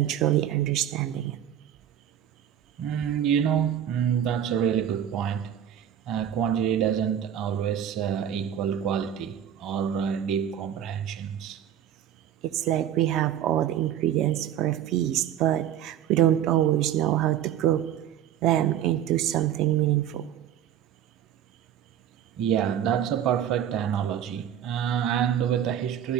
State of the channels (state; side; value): quieter; left; 10.3 dB